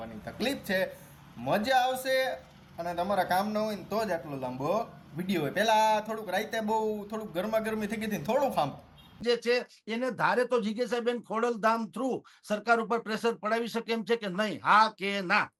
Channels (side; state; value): both; identical; correlation 1.00